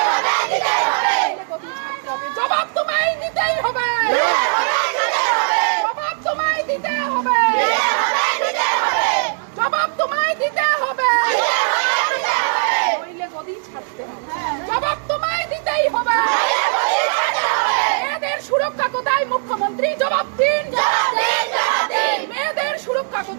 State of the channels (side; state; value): left; silent; digital silence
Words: জবাব তোমায় দিতেই হবে, জবাব তোমায় দিতে হবে, জবাব তোমায় দিতে হবে, নইলে গদি ছাড়তে হবে, জবাব তোমায় দিতেই হবে। মেয়েদের সুরক্ষা কোথায় মুখ্যমন্ত্রী? জবাব দিন, মেয়েদের সুরক্ষা